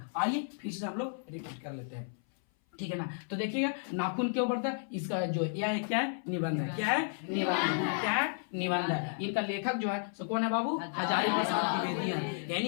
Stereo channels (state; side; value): silent; right; 56 dB below the other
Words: आइए फिर से हम लोग रिपीट कर लेते हैं, ठीक है ना। तो देखिएगा नाखून क्यों बढ़ता है, इसका जो यह क्या है? निबंध है। क्या है? निबंध। क्या है? निबंध है। इनका लेखक जो है सो कौन है बाबू? हजारी प्रसाद द्विवेदी है। यानी